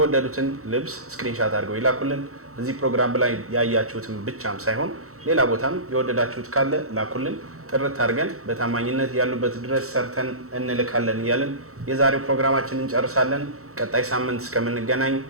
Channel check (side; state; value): left; late; 0.64 ms